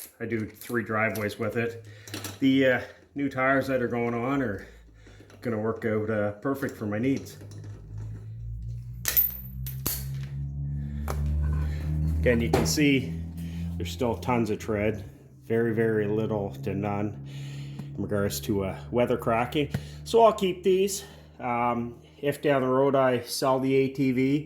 I do 3 driveways with it. The new tires that are going on are going to work out perfect for my needs. Again, you can see there's still tons of tread, very, very little to none in regards to weather cracking. So I'll keep these. If down the road I sell the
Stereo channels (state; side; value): identical; both; correlation 1.00